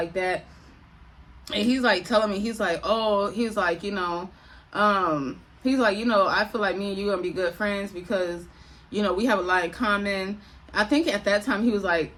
that. And he's like telling me, he's like, he's like, I feel like me and you gonna be good friends because, we have a lot in common. I think at that time he was like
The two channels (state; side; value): identical; both; correlation 1.00